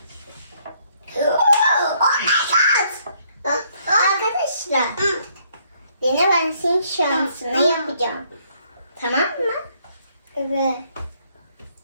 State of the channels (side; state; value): both; inverted; correlation -0.68